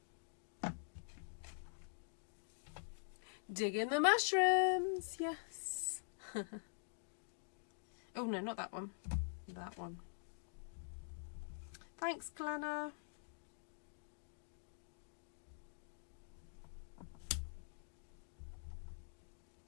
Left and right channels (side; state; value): right; silent; digital silence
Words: Dig in the mushrooms, yes. Oh no, not that one. That one. Thanks, Glenna.